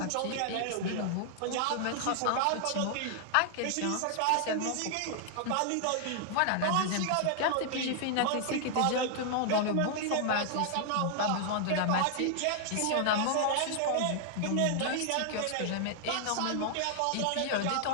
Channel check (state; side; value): different; both; correlation -0.01